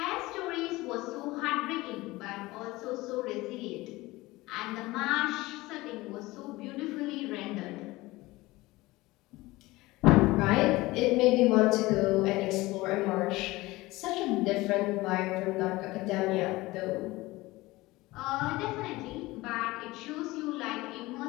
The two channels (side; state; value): right; quieter; 20.0 dB